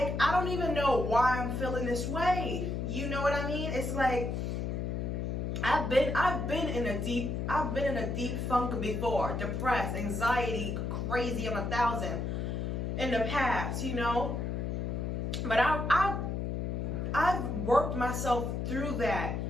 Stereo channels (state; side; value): noise; left; hum, 2 dB below the sound